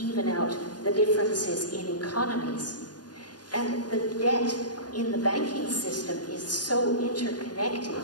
out the differences in economies. And the debt in the banking system is so interconnected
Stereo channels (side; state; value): right; late; 0.69 ms